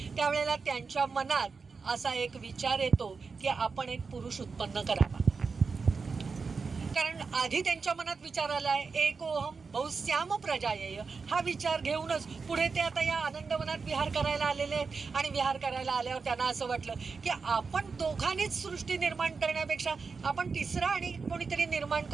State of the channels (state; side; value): quieter; left; 4.9 dB